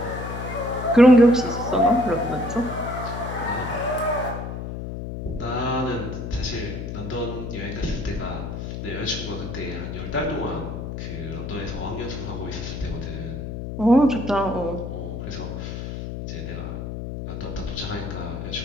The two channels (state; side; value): noise; left; hum, 6 dB below the sound